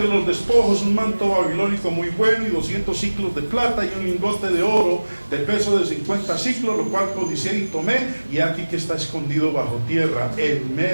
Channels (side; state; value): both; inverted; correlation -1.00